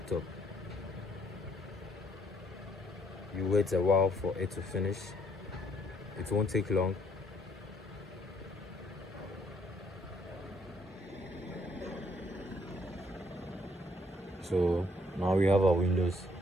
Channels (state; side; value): normal; both; correlation 0.67